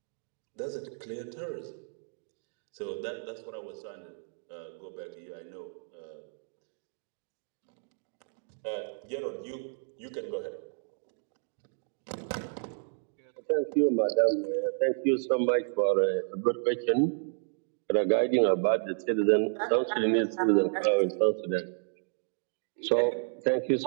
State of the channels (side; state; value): left; silent; digital silence